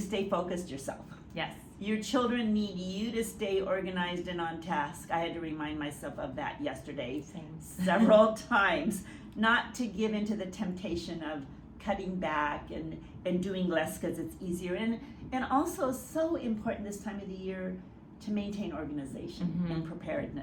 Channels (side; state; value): both; identical; correlation 1.00